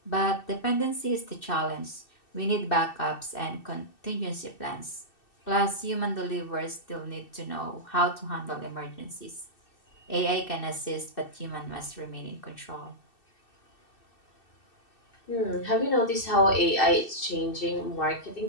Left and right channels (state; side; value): late; right; 2.6 ms